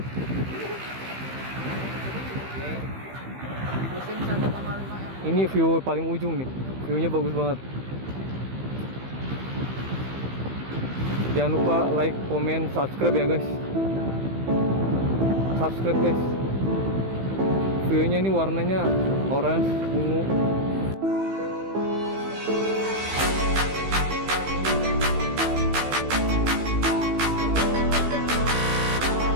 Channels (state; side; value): late; left; 15 ms